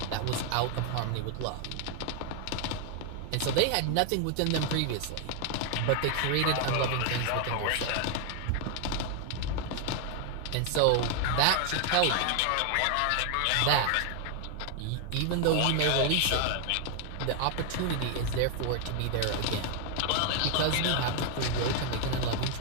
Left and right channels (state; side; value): different; both; correlation 0.00